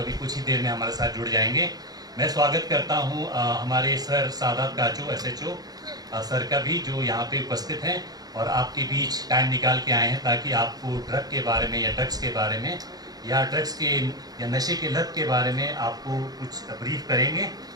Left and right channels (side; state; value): left; late; 0.19 ms